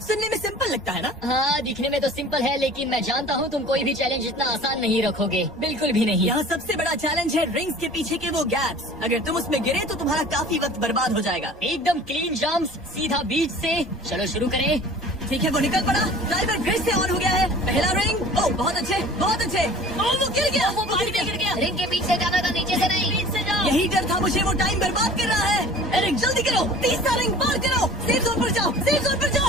सुनने में सिंपल लगता है ना? हाँ, दिखने में तो सिंपल है, लेकिन मैं जानता हूँ तुम कोई भी चैलेंज इतना आसान नहीं रखोगे। बिल्कुल भी नहीं। यहाँ सबसे बड़ा चैलेंज है रिंग्स के पीछे के वो गैप्स। अगर तुम उसमें गिरे तो तुम्हारा काफी वक्त बर्बाद हो जाएगा। एकदम क्लीन जंप्स, सीधा बीच से। चलो शुरू करें। ठीक है, वो निकल पड़ा। टाइमर फिर से ऑन हो गया है। पहला रिंग। ओह, बहुत अच्छे, बहुत अच्छे। ओह, वो गिर गया। वो पानी में गिर गया। रिंग के पीछे जाना था, नीचे से नहीं। बीच से जाओ। यही डर था मुझे, वो टाइम बर्बाद कर रहा है। एरिक, जल्दी करो। तीसरा रिंग पार करो। सेफ जोन पर जाओ, सेफ जोन पर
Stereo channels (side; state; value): both; normal; correlation 0.45